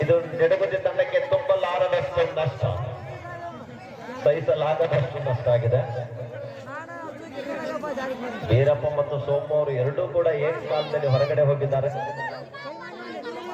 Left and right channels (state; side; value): identical; both; correlation 1.00